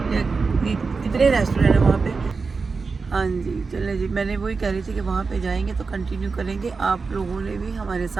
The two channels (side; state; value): left; quieter; 4.5 dB